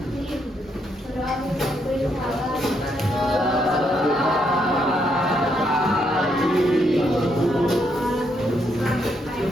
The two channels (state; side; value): normal; both; correlation 0.76